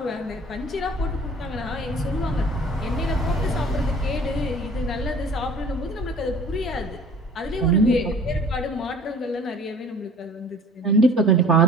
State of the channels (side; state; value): both; normal; correlation 0.48